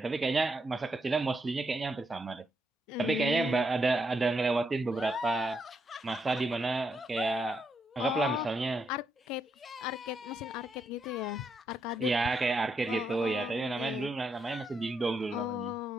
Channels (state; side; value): normal; both; correlation 0.80